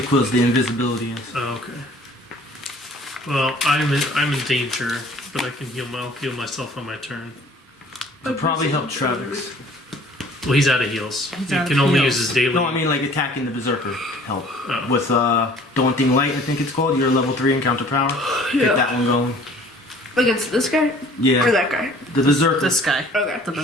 quills, the invisibility is. Oh, okay. Well, I'm in danger, but I can heal myself on my turn. It'll probably help Travex. Well, he's out of heals. He out can of only heals. use his daily. No, I mean like attacking the Berserker help. Oh. With Daunting Light, I think it's called, your level 3 encounter power. Yeah. Get that one going. Against this guy? Yeah. Or that guy? The Berserker. This guy. Okay. The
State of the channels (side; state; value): both; normal; correlation 0.52